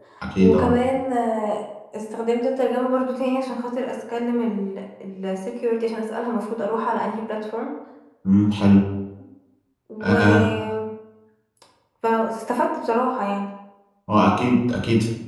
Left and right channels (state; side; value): identical; both; correlation 1.00